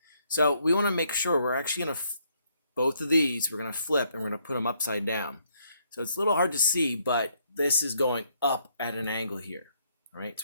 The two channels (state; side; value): inverted; both; correlation -0.71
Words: so we want to make sure we're actually going to both of these we're going to flip and we're going to put them upside down. So it's a little hard to see, but this is going up at an angle here. All right,